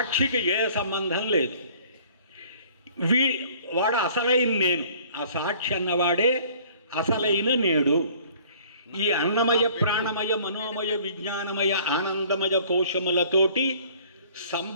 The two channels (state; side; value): inverted; both; correlation -0.53